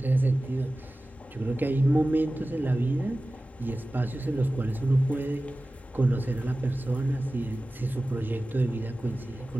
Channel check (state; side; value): normal; both; correlation 0.96